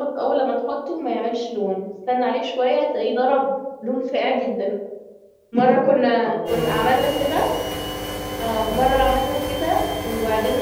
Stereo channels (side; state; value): both; identical; correlation 1.00